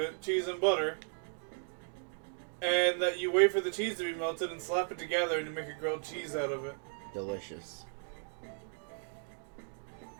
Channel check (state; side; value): silent; left; 54 dB below the other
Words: cheese and butter. And that you wait for the cheese to be melted and slap it together and you make a grilled cheese out of it. Delicious.